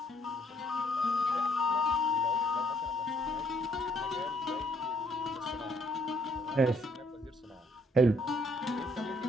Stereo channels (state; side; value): normal; both; correlation 0.67